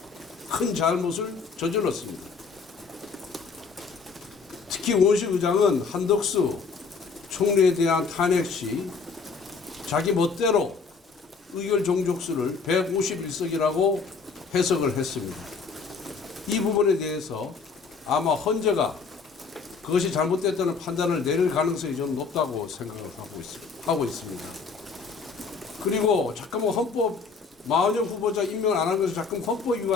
큰 잘못을 저질렀습니다. 특히 우원식 의장은 한덕수 총리에 대한 탄핵 시 자기 멋대로 의결 종족수를 151석이라고 해석을 했습니다. 이 부분에 대해서 아마 헌재가 그것이 잘못됐다는 판단을 내릴 가능성이 좀 높다고 생각을 하고 있습니다. 그리고 자꾸만 마은혁 후보자 임명을 안 한 것을 자꾸 헌법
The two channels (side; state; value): right; quieter; 4.9 dB